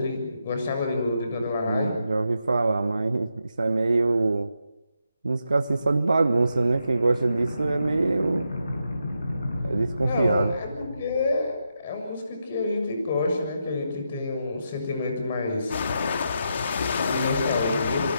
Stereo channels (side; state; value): both; inverted; correlation -0.84